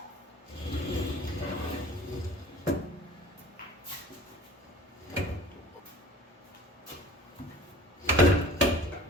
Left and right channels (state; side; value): normal; both; correlation 0.45